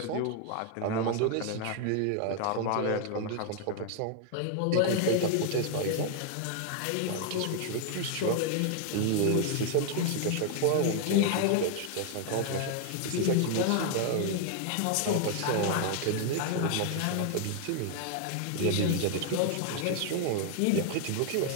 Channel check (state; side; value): different; both; correlation 0.00